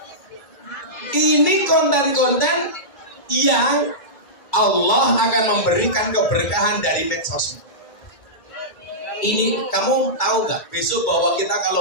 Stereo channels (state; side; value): late; right; 2.3 ms